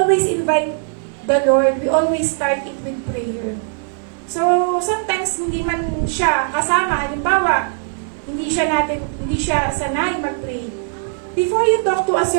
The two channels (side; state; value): left; silent; digital silence